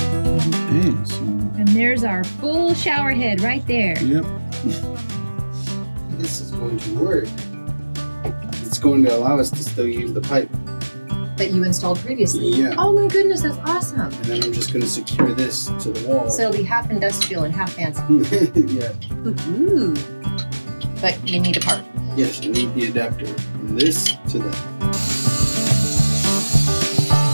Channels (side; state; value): both; inverted; correlation -1.00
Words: Okay, so. And there's our full shower head right there. Yep. This is going to work. It's going to allow us to still use the pipe. That you installed previously? Yeah. Oh my goodness, that's awesome. And then I'm just going to secure this to the wall. So it'll be half industrial and half fancy. Yeah. Ooh. But you need a part. Yes, I need the adapter from this to that.